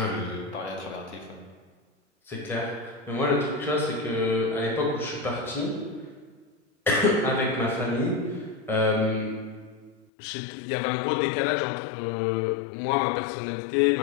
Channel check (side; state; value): right; drops out; at 10.1 s